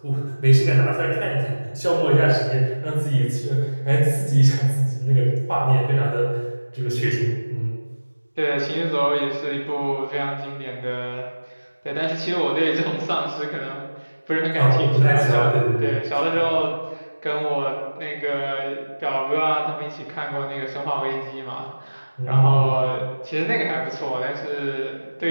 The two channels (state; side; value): inverted; both; correlation -1.00